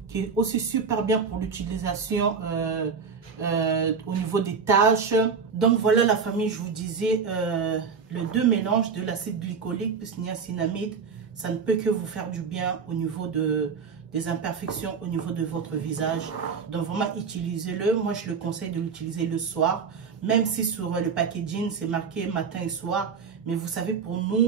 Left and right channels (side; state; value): left; quieter; 5.7 dB